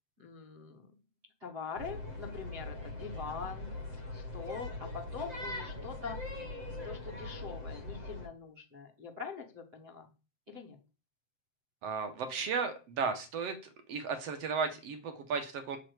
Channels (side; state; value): left; late; 7.8 ms